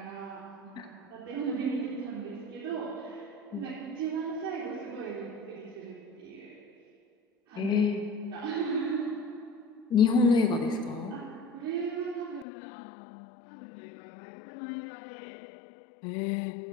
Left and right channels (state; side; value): drops out; right; at 12.5 s